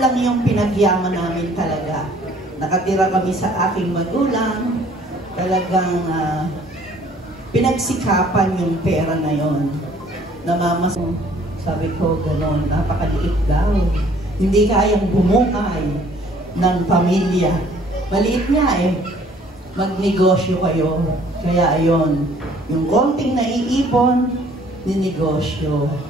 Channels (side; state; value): both; normal; correlation 0.57